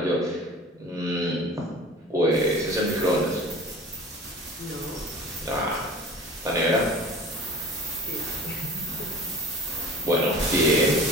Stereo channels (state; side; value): normal; both; correlation 0.40